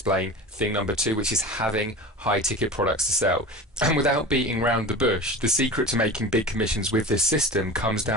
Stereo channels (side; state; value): both; normal; correlation 0.32